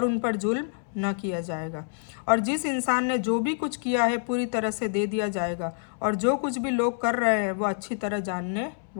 उन पर जुल्म न किया जाएगा। और जिस इंसान ने जो भी कुछ किया है पूरी तरह से दे दिया जाएगा, और जो कुछ भी लोग कर रहे हैं वो अच्छी तरह जानने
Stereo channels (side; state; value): right; silent; 60 dB below the other